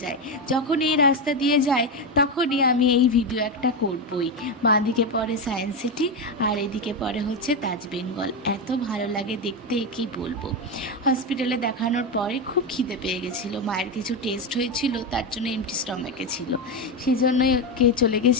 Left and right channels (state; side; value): normal; both; correlation 0.11